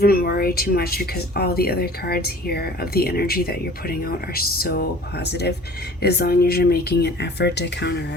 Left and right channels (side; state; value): both; normal; correlation 0.47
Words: worry too much, because all the other cards here of the energy that you're putting out are so positive. As long as you're making an effort to